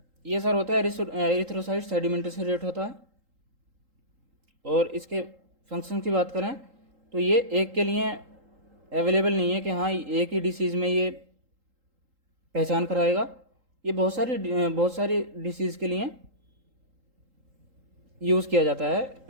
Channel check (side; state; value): left; late; 3.8 ms